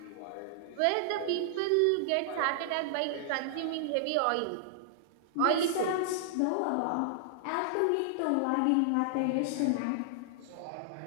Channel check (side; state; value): both; different; correlation -0.01